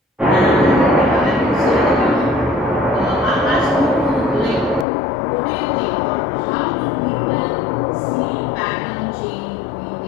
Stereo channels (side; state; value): right; drops out; at 4.9 s